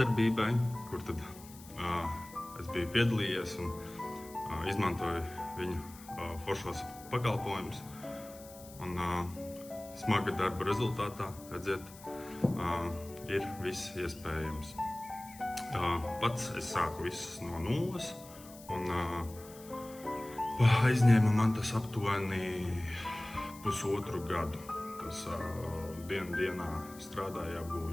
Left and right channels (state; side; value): noise; left; hiss, 19 dB below the sound